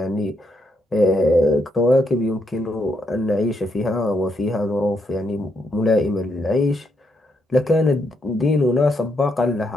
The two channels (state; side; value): normal; both; correlation 0.78